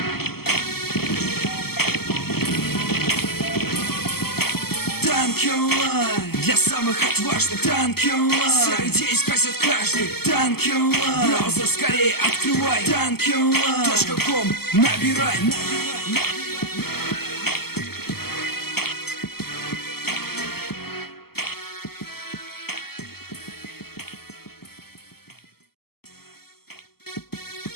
Танки онлайн для самых отважных. Танки онлайн серый день скрасит каждый. Танки онлайн браузер скорее открывай. Танки онлайн .com набирай.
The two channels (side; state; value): right; late; 0.96 ms